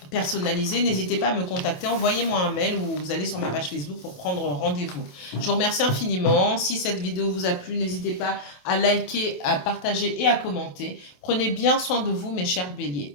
personnalisée, n'hésitez pas à me contacter. Envoyez-moi un mail ou vous allez sur ma page Facebook pour prendre rendez-vous. Je vous remercie infiniment. Si cette vidéo vous a plu, n'hésitez pas à liker, à partager et à commenter. Prenez bien soin de vous, mes chers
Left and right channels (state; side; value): late; right; 27 ms